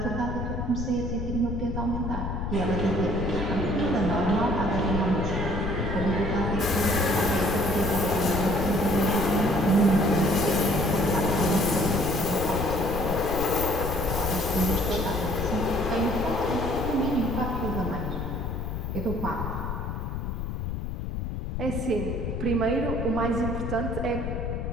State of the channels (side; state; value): left; noise; rumble, 4 dB below the sound